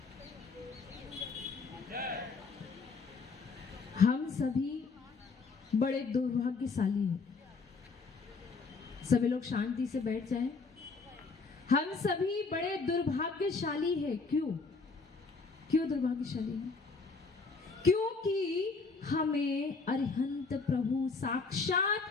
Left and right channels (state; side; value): quieter; right; 4.4 dB